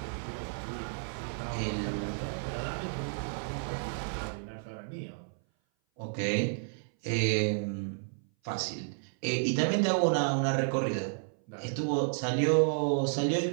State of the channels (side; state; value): left; silent; 57 dB below the other